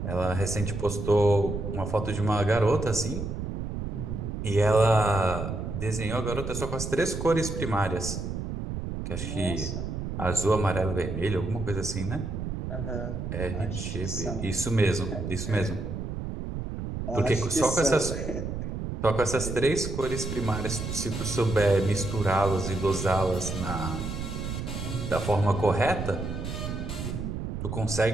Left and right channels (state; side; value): noise; right; rumble, 5 dB below the sound